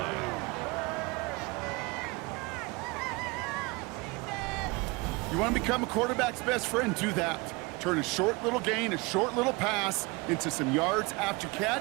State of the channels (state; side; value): quieter; left; 25.7 dB